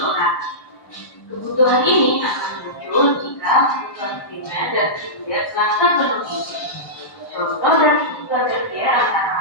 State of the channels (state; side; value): late; right; 1.1 ms